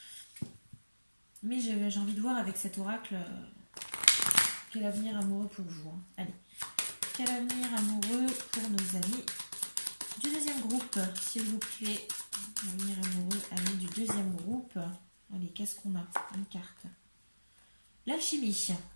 Mais j'ai envie de voir avec cet oracle quel avenir amoureux pour vous. Allez, quel avenir amoureux pour nos amis du deuxième groupe, s'il vous plaît. Avenir amoureux, amis du deuxième groupe. Allez, qu'est-ce qu'on a? Une carte. L'alchimie.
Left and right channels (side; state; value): both; inverted; correlation -1.00